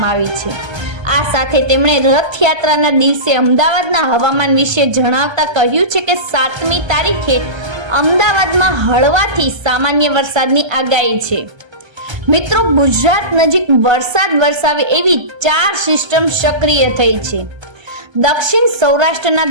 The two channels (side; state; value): left; late; 1.3 ms